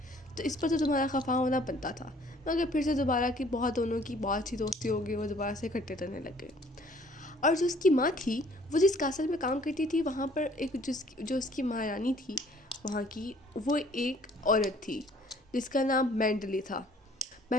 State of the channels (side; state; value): both; normal; correlation 0.57